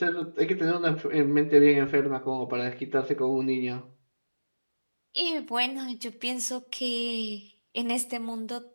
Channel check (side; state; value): both; inverted; correlation -1.00